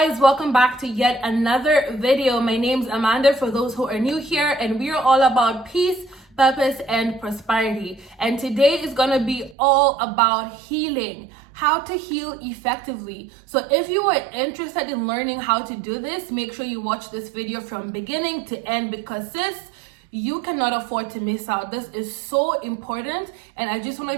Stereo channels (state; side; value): drops out; left; at 9.6 s